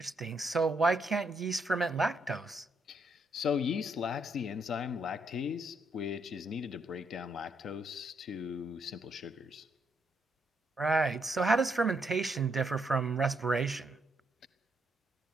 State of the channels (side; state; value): both; normal; correlation 0.76